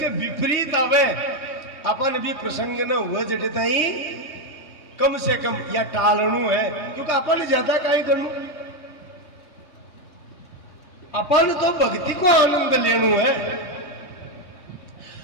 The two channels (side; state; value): right; late; 3.2 ms